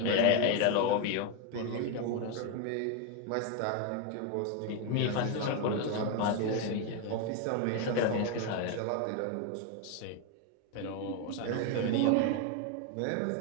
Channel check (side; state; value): both; different; correlation 0.02